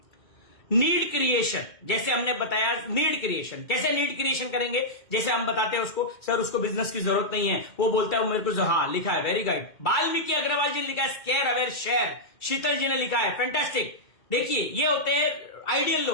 नीड क्रिएशन, जैसे हमने बताया नीड क्रिएशन कैसे नीड क्रिएशन करेंगे। जैसे हम बताते हैं उसको, सर उसको बिजनेस की जरूरत नहीं है, वो बोलता है मेरे को हाँ लिखा है, वेरी गुड। वाल्मीकि अग्रवाल जी ने लिखा है स्केयर अवेयर शेयर, शीतल जी ने लिखा है फैंटास्टिक। देखिए ये होते हैं आइडियल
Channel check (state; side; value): late; right; 2.3 ms